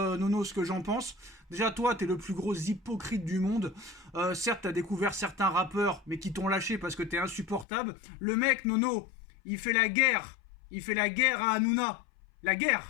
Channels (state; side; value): drops out; right; at 7.7 s